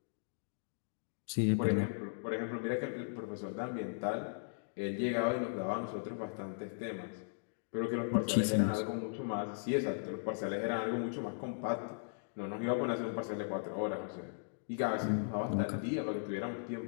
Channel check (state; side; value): silent; right; digital silence